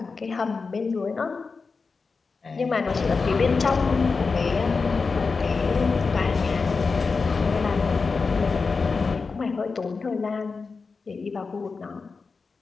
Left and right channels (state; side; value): quieter; right; 4.6 dB